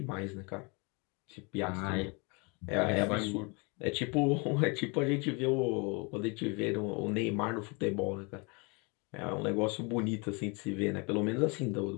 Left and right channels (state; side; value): quieter; right; 30.6 dB